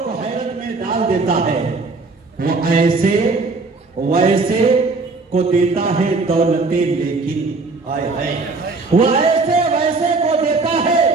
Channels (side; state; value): left; quieter; 3.8 dB